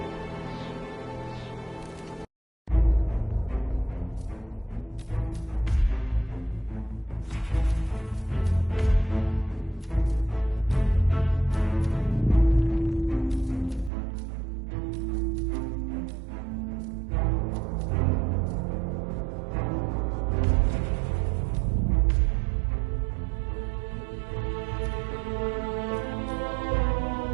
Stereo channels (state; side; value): drops out; left; at 13.9 s